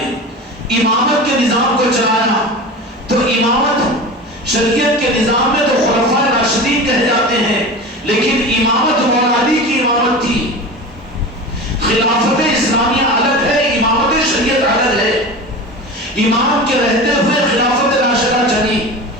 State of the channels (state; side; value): normal; both; correlation 0.30